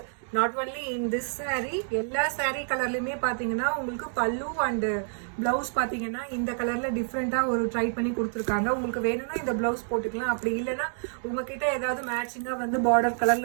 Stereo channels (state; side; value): silent; left; 59 dB below the other